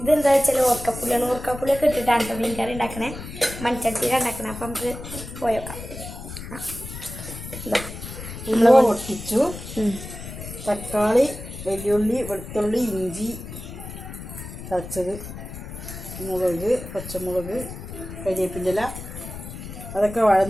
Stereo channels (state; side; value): noise; left; rumble, 11 dB below the sound